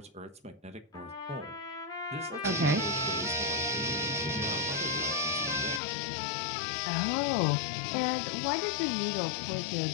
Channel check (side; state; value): right; drops out; at 5.8 s